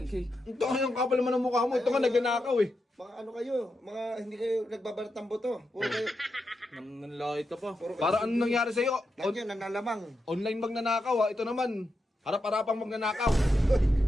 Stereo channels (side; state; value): both; normal; correlation 0.86